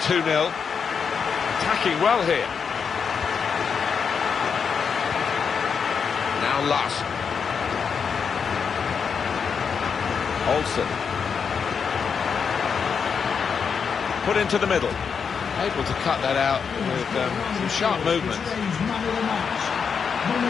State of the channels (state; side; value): quieter; right; 6.3 dB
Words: 2-0. Attacking well here. Now Last. Olsen. Put into the middle. Able to cut that out with some sharp movement.